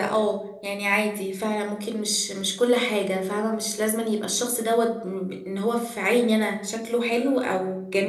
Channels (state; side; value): identical; both; correlation 1.00